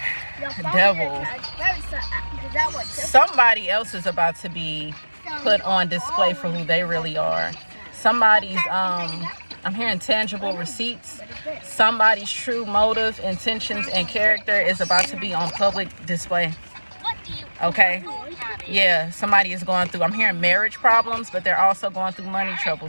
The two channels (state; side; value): inverted; both; correlation -1.00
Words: Devil. Somebody else is about to be put on display for who they really are. Somebody's I'm hearing tangible receipts. Somebody's true motive, intentions, and character is about to be on public display. Okay? Yeah, somebody is going through, I'm hearing marriage problems, but they're also going through money